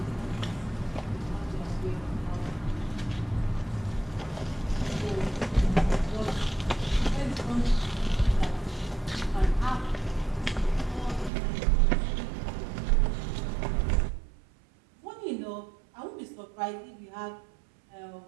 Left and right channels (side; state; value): left; drops out; at 11.3 s